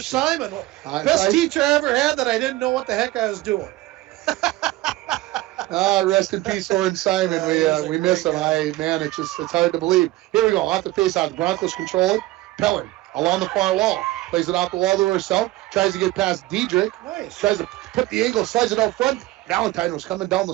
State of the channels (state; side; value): quieter; left; 17.8 dB